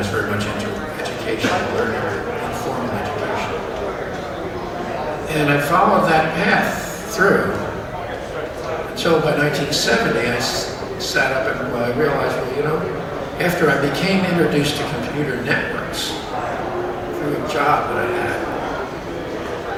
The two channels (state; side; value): identical; both; correlation 1.00